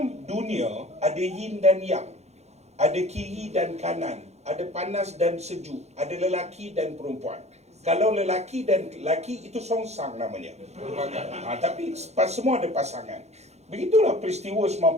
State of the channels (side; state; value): left; late; 0.32 ms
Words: dunia ada yin dan yang. Ada kiri dan kanan. Ada panas dan sejuk. Ada lelaki dan perempuan. Kalau lelaki dan lelaki itu songsang namanya. Tapi semua ada pasangan. Begitulah peristiwa